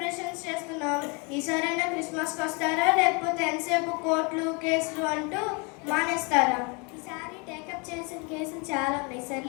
చేస్తున్నాం. ఈసారైనా క్రిస్మస్కి వస్తారా, లేకపోతే ఎంతసేపు కోర్టులు, కేసులు అంటూ మానేస్తారా? ఈసారి టేకప్ చేసిన కేసులు చాలా ఉన్నాయి.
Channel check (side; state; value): right; quieter; 31.4 dB